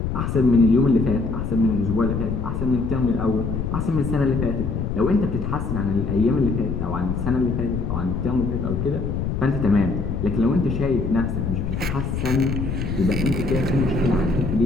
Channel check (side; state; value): left; noise; rumble, 2 dB below the sound